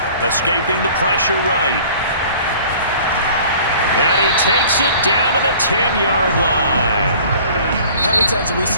Escaping the pressure right. And he takes it down to the 10-yard line. How many times have we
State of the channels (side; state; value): both; inverted; correlation -0.49